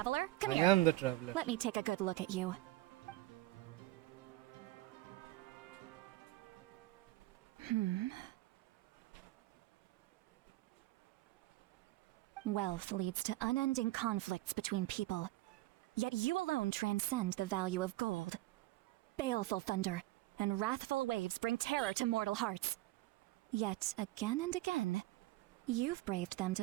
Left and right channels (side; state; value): left; quieter; 18.1 dB